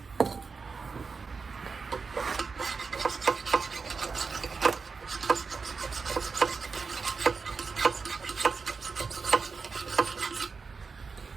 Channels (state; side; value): quieter; left; 4.8 dB